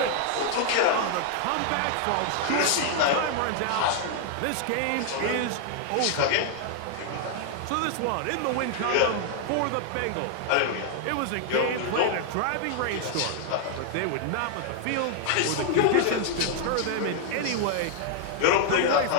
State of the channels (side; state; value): both; different; correlation 0.00